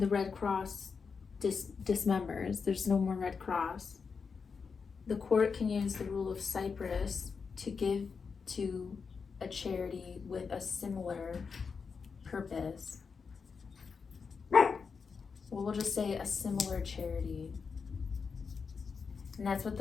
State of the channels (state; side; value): quieter; right; 5.5 dB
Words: Red Cross dismembers. There's no more Red Cross. The court can use the rule of Cypress to give to a charity with a similar purpose. Well, we'll just say a similar charity. And that's what